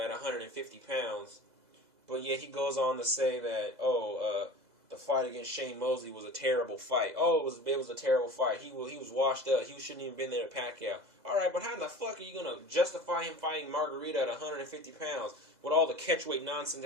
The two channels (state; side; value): late; left; 2.0 ms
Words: at 150 pounds, but yet he goes on to say that, the fight against Shane Mosley was a terrible fight. Oh, it was a terrible fight. He was washed up. He shouldn't even been there to Pacquiao. All right, but how the fuck are you going to justify him fighting Margarito at 150 pounds with all the catchweight nonsense